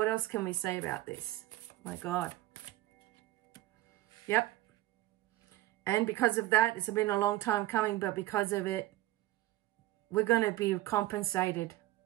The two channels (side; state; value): left; quieter; 16.2 dB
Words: else can we say about this? My God. Yep. And because of that, it's been a long time coming, but because of it, we're going to be compensated.